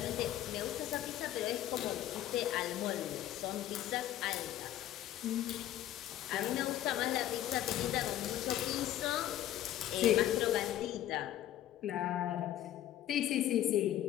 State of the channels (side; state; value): right; quieter; 12.7 dB